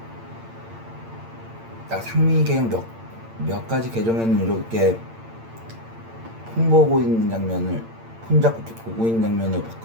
나 상민이 계정 몇 가지 계정에는 이렇게 폰 보고 있는 장면을, 폰 잡고 이렇게 보고 있는 장면을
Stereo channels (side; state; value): left; late; 8.8 ms